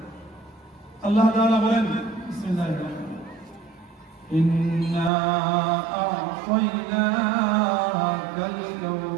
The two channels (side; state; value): left; drops out; at 5.1 s